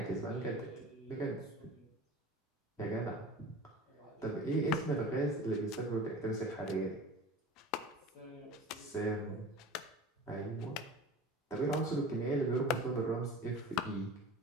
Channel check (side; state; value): both; normal; correlation 0.38